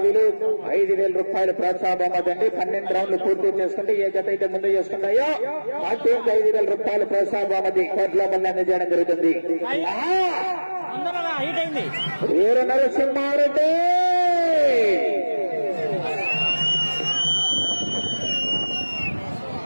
5,000 రూపాయలు ప్రోత్సాహ బహుమతి. 12 రౌండ్లు పూర్తి చేసుకుంటే ఏ జత అయితే ముందు చేసుకుంటాయో ఆ టీంకి 5,000 రూపాయలు ప్రోత్సాహ బహుమతి కోట్ల మళ్ళీ అందజేయడం జరుగుతుంది. వీర నరసింహారెడ్డి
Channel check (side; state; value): both; inverted; correlation -1.00